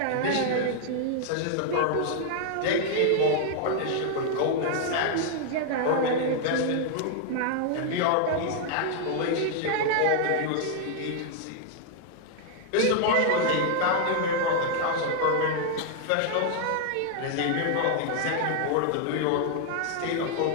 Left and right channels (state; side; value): different; both; correlation 0.00